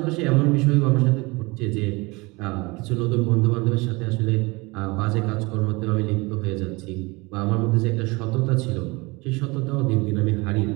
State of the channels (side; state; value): left; quieter; 25.2 dB